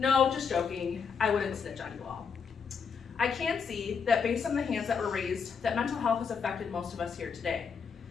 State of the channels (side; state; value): right; quieter; 6.1 dB